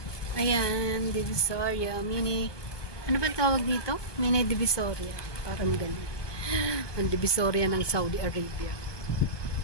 Ayan, Divisoria mini. Ano ba tawag dito? Mini Divisoria. Parang ganun. Ang Divisoria ng Saudi Arabia.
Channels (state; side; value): late; right; 1.2 ms